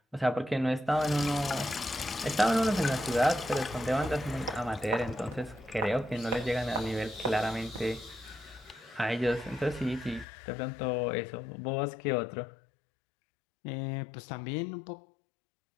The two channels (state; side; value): drops out; right; at 10.2 s